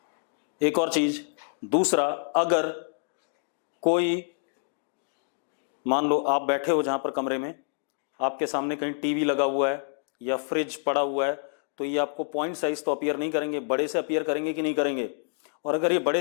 एक और चीज, दूसरा, अगर कोई, मान लो आप बैठे हो जहां पर कमरे में, आपके सामने कहीं टीवी लगा हुआ है या फ्रिज पड़ा हुआ है, तो ये आपको पॉइंट साइज तो अपीयर नहीं करेंगे, बड़े से अपीयर करेंगे कि नहीं करेंगे? और अगर ये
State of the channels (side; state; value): right; silent; 60 dB below the other